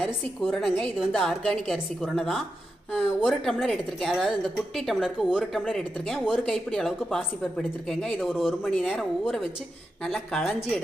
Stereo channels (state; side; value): normal; both; correlation 0.88